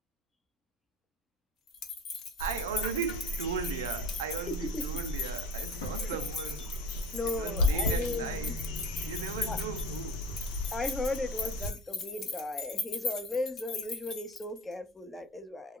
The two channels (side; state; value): both; normal; correlation 0.34